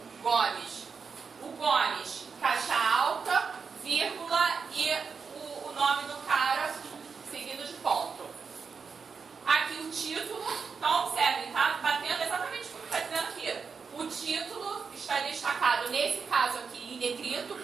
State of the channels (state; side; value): quieter; left; 5.5 dB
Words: Gomes. O Gomes, caixa alta, vírgula e o nome do cara seguido de ponto. Aqui o título, então observem, tá batendo exatamente o que está dizendo aqui. O título está destacado, nesse caso aqui, em negrito,